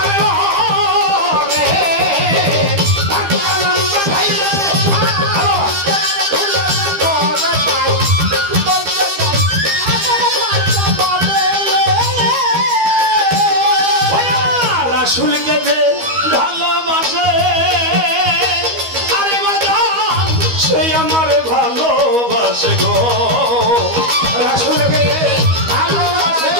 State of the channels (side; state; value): left; late; 13 ms